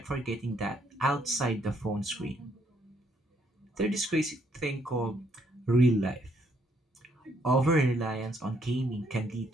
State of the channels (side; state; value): both; normal; correlation 0.70